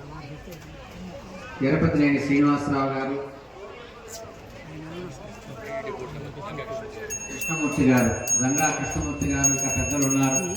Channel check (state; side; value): identical; both; correlation 1.00